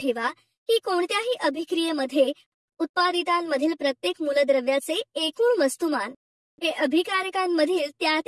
की कोणत्याही अभिक्रियेमध्ये उत्पादितांमधील प्रत्येक मूलद्रव्याचे एकूण वस्तुमान हे अभिकारकांमधील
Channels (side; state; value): both; identical; correlation 1.00